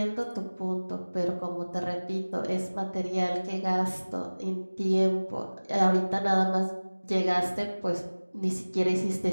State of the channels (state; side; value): inverted; both; correlation -1.00